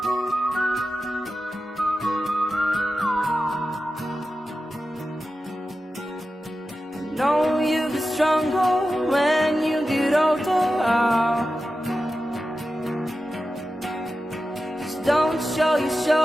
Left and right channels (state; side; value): normal; both; correlation 0.92